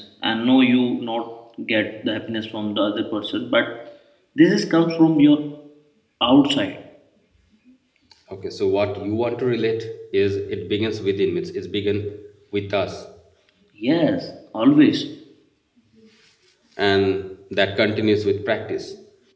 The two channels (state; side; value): identical; both; correlation 1.00